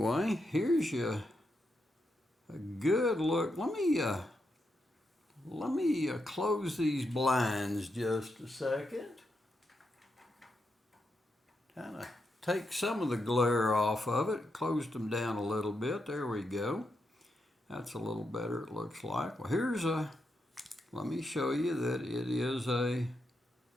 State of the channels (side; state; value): both; normal; correlation 0.83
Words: here's a good look. Let me close these blinds just a second. Kind of take some of the glare off of it. Closed them down a little bit. There we go. That's a little better, it looks like. Well, let me show you that it is a